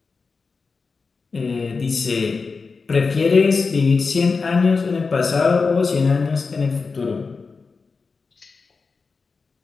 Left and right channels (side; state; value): right; quieter; 4.6 dB